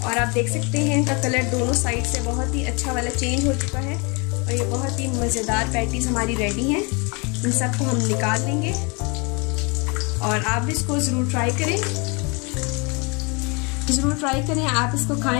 और आप देख सकते हैं इनका कलर दोनों साइड से बहुत ही अच्छा वाला चेंज हो चुका है और ये बहुत ही मज़ेदार पैटीज हमारी रेडी हैं। इन सबको हम निकाल लेंगे और आप इसको ज़रूर ट्राई करें, आप इसको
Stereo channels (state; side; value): quieter; right; 30.7 dB